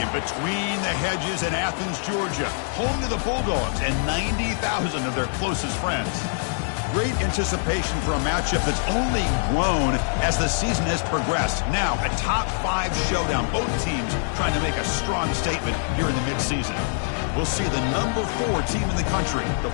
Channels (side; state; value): right; silent; digital silence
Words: between the hedges in Athens, Georgia, home to the Bulldogs and 90,000 of their closest friends. Great anticipation for a matchup that's only grown as the season has progressed. Now, a top-5 showdown. Both teams trying to make a strong statement here in the midseason. We'll see the number 4 team in the country, the